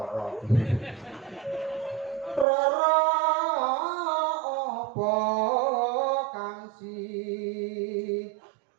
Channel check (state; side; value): drops out; left; at 2.5 s